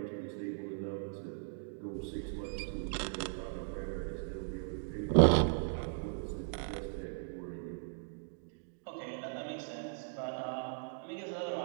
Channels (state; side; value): silent; left; digital silence